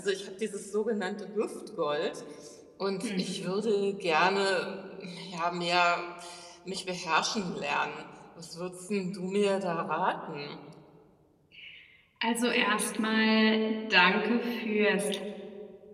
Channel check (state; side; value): identical; both; correlation 1.00